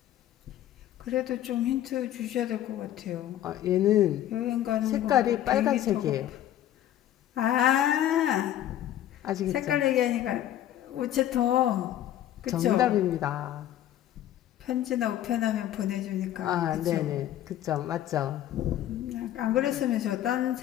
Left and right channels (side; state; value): right; quieter; 12.2 dB